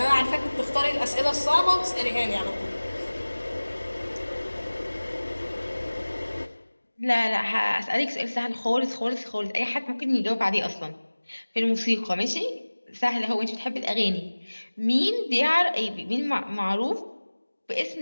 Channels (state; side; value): inverted; both; correlation -1.00